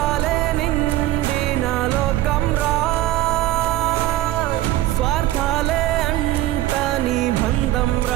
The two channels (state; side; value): quieter; left; 15.4 dB